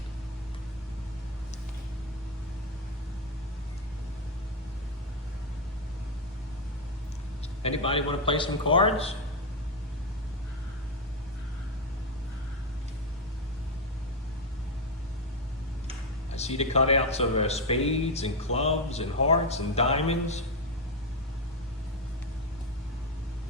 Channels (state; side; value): normal; both; correlation 0.07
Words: Anybody want to play some cards? I see the cutouts of spades and clubs and hearts and diamonds.